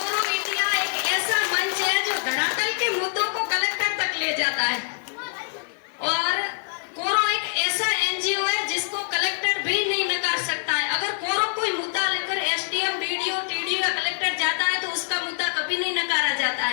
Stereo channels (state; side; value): silent; right; 56 dB below the other